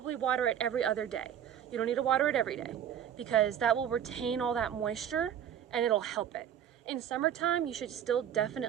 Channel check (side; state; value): left; quieter; 9.5 dB